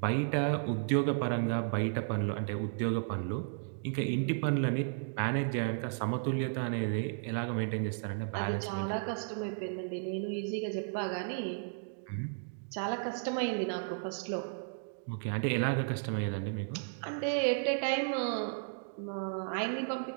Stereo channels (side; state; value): left; silent; digital silence